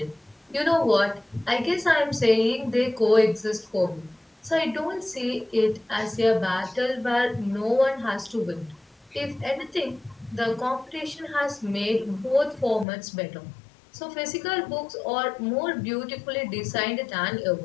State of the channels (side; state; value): right; drops out; at 12.9 s